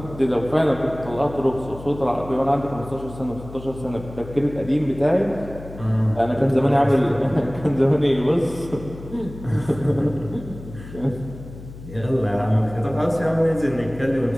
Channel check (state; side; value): noise; left; hum, 15 dB below the sound